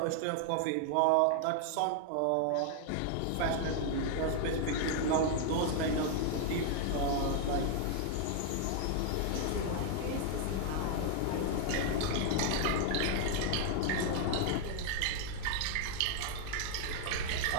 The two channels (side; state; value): both; different; correlation 0.00